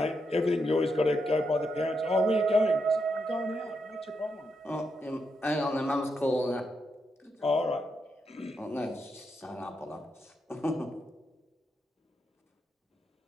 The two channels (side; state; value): both; normal; correlation 0.82